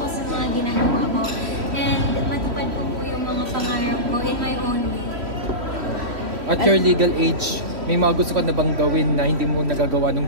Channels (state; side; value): late; left; 3.1 ms